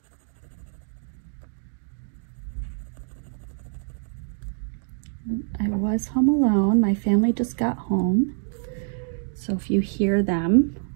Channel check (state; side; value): silent; left; 61 dB below the other